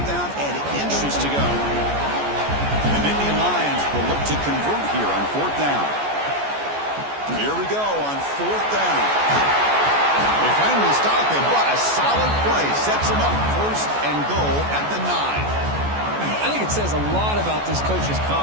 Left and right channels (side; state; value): left; late; 14 ms